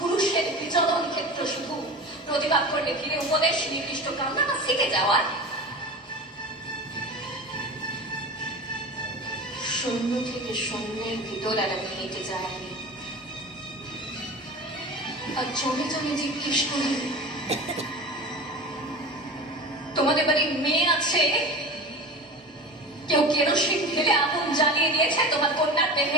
বিচরণ ক্ষেত্র শুধু। প্রতিবাদ করলে ভিড়ে উপদেশ, নির্দিষ্ট কামনা বা শিখে যাওয়ার। শূন্য থেকে শূন্যের ভিতর আর আমি হেঁটে যাইনি। আর জমে জমে জিজ্ঞেস করি, তোমাদের বাড়ির মেয়ে আছে? কেউ কেরোসিন ঢেলে আগুন জ্বালিয়ে দিয়েছে তোমার কন্যার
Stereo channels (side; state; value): both; normal; correlation 0.33